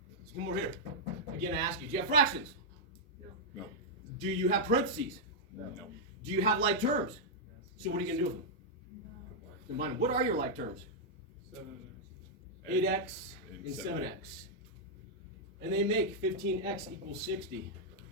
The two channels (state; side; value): normal; both; correlation -0.06